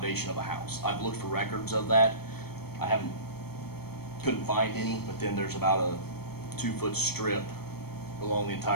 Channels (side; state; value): right; late; 0.96 ms